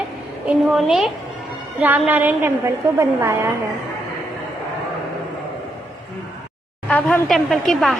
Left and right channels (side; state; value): both; normal; correlation 0.78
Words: इन्होंने रामनारायण टेम्पल को बनवाया है। अब हम टेम्पल के